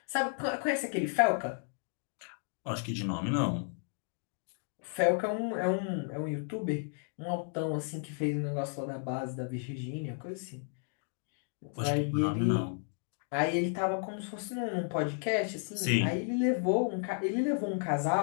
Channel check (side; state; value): right; silent; 56 dB below the other